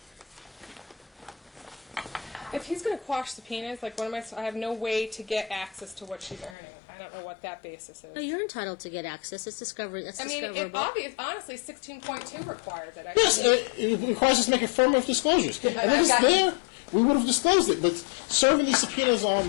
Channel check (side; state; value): right; drops out; at 6.6 s